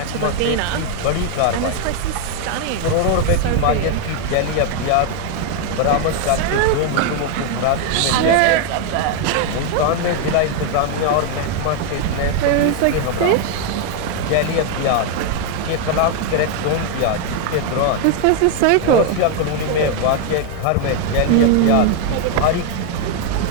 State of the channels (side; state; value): both; different; correlation 0.01